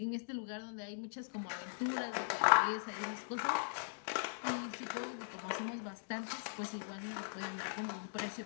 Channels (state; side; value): silent; right; digital silence